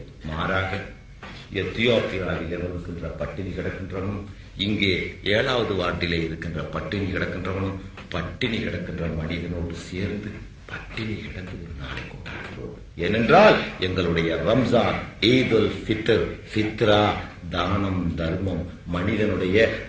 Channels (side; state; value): both; identical; correlation 1.00